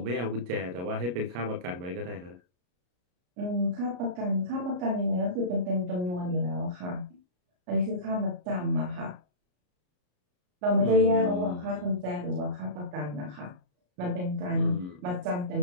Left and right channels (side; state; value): left; late; 33 ms